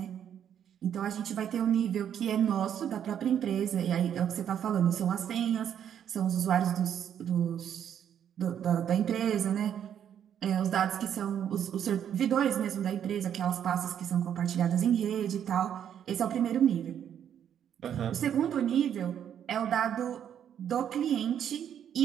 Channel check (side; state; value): left; quieter; 9.3 dB